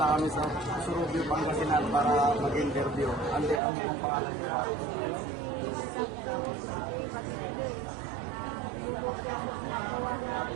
kami sa Surubio, Pangasinan para mag-interview. Ante, ano pong pangalan niyo?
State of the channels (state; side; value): drops out; left; at 3.6 s